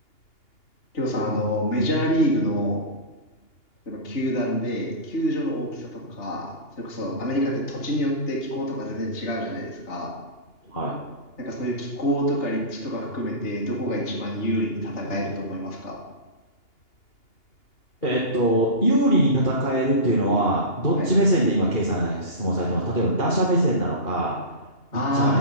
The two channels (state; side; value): late; right; 2.8 ms